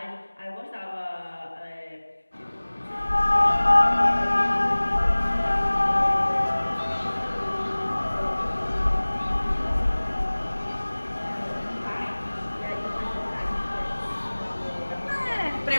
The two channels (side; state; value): both; inverted; correlation -1.00